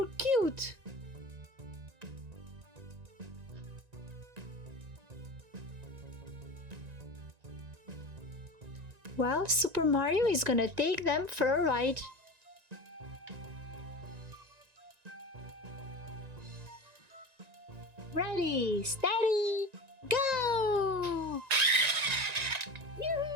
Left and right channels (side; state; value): left; late; 1.9 ms